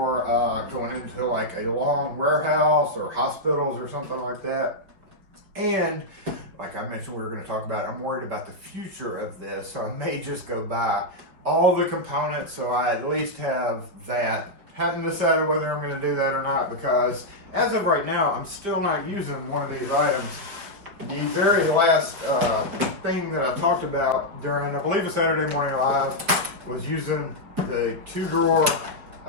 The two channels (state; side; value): late; left; 5.5 ms